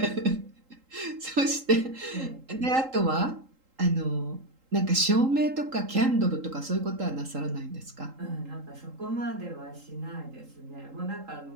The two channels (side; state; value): left; late; 3.8 ms